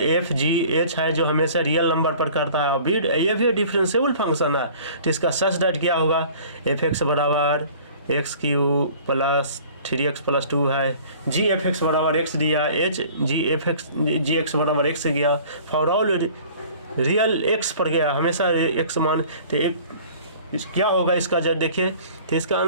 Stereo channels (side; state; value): both; inverted; correlation -0.48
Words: जी एच है जो हमेशा रियल नंबर पर करता है। ये भी डिफरेंशिएबल फंक्शन है, तो इसका सच दैट क्या होगा, एफ एक्स बराबर x Q plus 3x plus 2 है। जी एफ एक्स बराबर एक्स दिया, एच जी एक्स बराबर एक्स गया, फॉर ऑल रियल एक्स पर गया, हमेशा एक्स मान। तो क्या होगा इसका जब देखिए, तो इसका